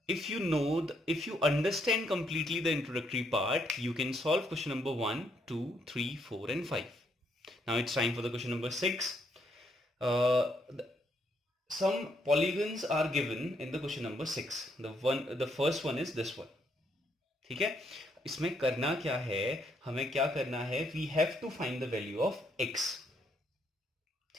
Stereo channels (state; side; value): normal; both; correlation 0.73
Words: if you understand completely the introductory part, you can solve question number 1, 2, 3, 4 and 5. Now it's time for the question number 6. Some polygons are given in the question number 6. The first one is this one. ठीक है, इसमें करना क्या है, हमें क्या करना है, we have to find the value of x.